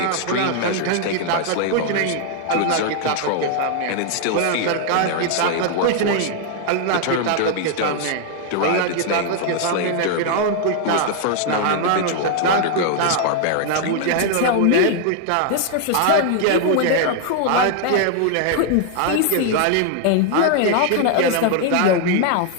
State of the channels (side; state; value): both; different; correlation 0.00